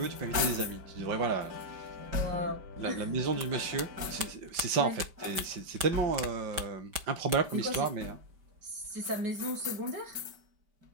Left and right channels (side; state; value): left; late; 5.1 ms